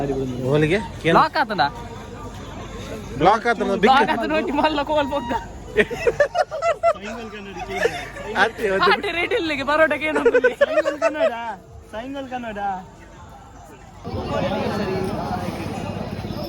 ಓಲಿಗೆ ಬ್ಲಾಕ್ ಆತನ ಬ್ಲಾಕ್ ಆತ ನೋಡಿ ಮಲ್ಲ ಕೋಲ್ ಬೊಕ್ಕ ಆಟೆ ರೇಟ್ ಇಲ್ಲಿಗೆ ಪರೋಟಕ್ಕೆ ಏನು ಸೈಂಗಲ್ ಕನ್ನಡ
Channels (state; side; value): identical; both; correlation 1.00